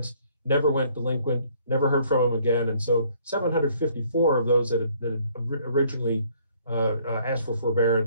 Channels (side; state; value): both; inverted; correlation -0.62